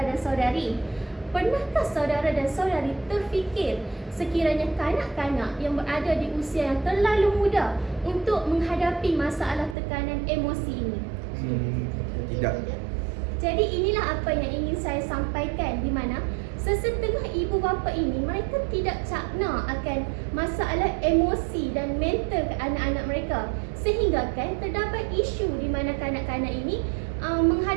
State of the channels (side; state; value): left; drops out; at 9.8 s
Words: dan saudari, pernahkah saudara dan saudari terfikir sekiranya kanak-kanak yang berada di usia yang terlalu muda untuk menghadapi masalah tekanan emosi ini? Tidak. Jadi inilah apa yang ingin saya sampaikan, di mana sesetengah ibu bapa ini mereka tidak cakna akan masalah emosi dan mental ke anak-anak mereka, sehingga kan terdapat isu di mana kanak-kanak ini